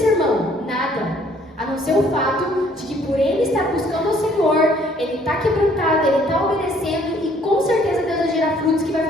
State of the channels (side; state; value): both; normal; correlation 0.61